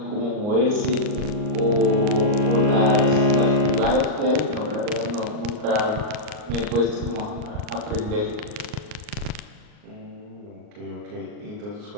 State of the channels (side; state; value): left; late; 38 ms